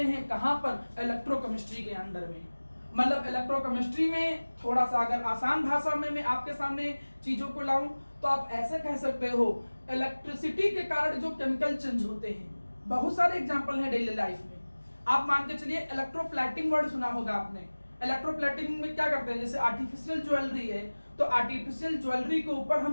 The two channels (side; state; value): both; inverted; correlation -1.00